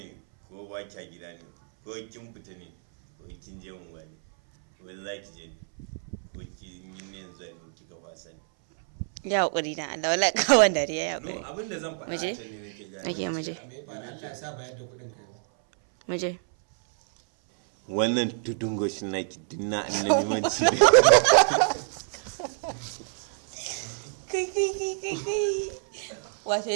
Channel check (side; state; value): left; silent; 59 dB below the other